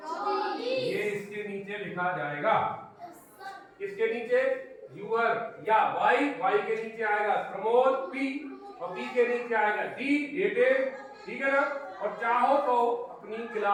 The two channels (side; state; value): both; identical; correlation 1.00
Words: ये इसके नीचे लिखा जाएगा। इसके नीचे यूर या वाई के नीचे आएगा प्रमोद P, और P के नीचे आएगा D, डेटेड, ठीक है ना। और चाहो तो अपनी